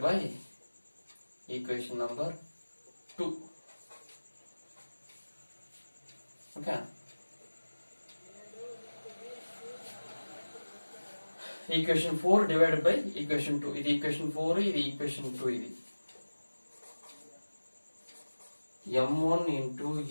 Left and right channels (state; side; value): inverted; both; correlation -1.00